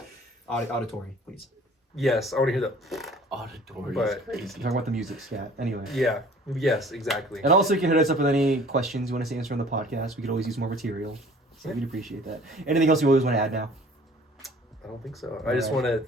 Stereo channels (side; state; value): both; normal; correlation 0.51